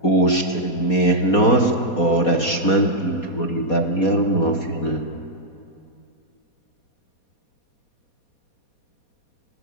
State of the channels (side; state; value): right; late; 4.2 ms